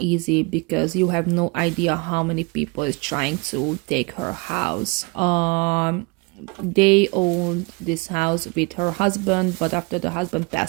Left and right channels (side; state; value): left; quieter; 28.7 dB